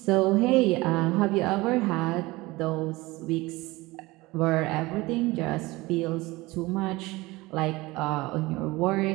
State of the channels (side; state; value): left; quieter; 21.2 dB